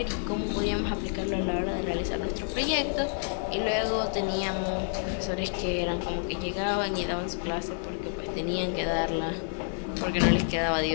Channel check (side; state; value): right; silent; digital silence